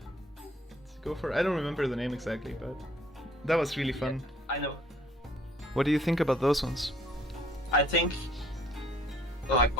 to go for. I don't remember the name exactly, but that was really fun. I know. What do you think about those ones? I think, like,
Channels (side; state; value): both; normal; correlation 0.59